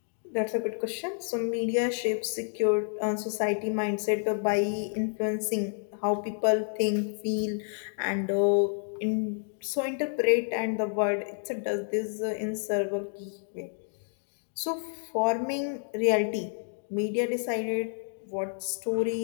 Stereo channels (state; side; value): silent; right; 58 dB below the other